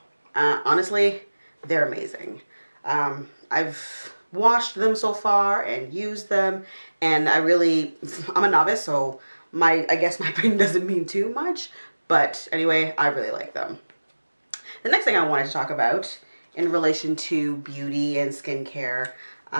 Honestly, they're amazing. I've washed them so far and used them, and I'm a novice, so I guess my opinion doesn't mean too much, but anyway, I really like them. The next thing I wanted to talk about in relation to beauty and skincare,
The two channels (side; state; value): both; inverted; correlation -1.00